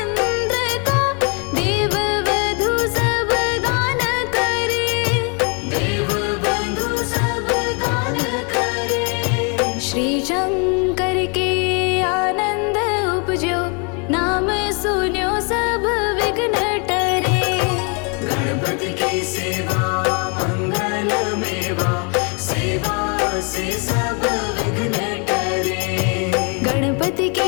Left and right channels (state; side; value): quieter; right; 35.7 dB